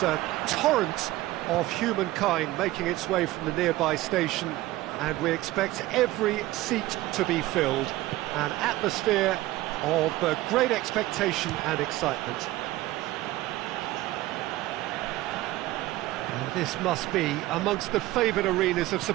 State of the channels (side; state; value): left; quieter; 17.1 dB